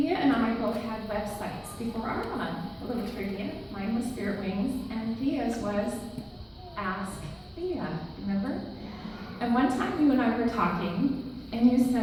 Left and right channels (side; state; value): both; identical; correlation 1.00